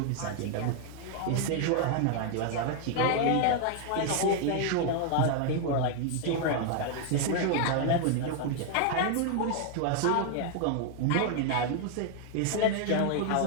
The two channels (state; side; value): different; both; correlation 0.00